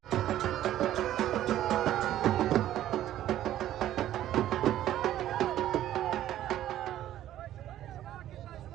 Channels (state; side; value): quieter; left; 12.7 dB